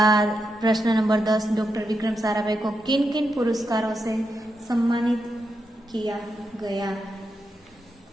प्रश्न नंबर 10, डॉक्टर विक्रम साराभाई को किन किन पुरस्कारों से सम्मानित किया गया?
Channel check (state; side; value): normal; both; correlation 0.85